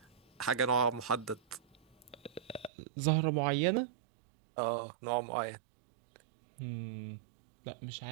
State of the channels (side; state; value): left; drops out; at 2.7 s